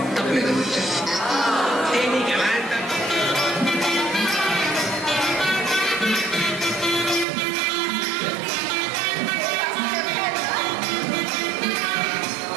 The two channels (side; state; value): left; drops out; at 7.2 s